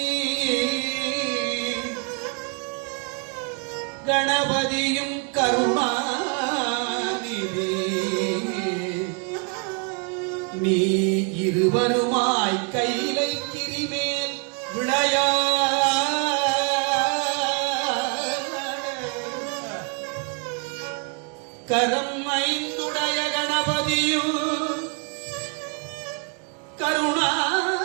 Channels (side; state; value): left; quieter; 38.1 dB